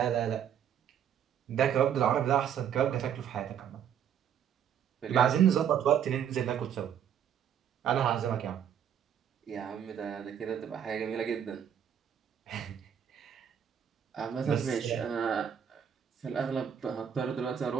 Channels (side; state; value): left; quieter; 8.8 dB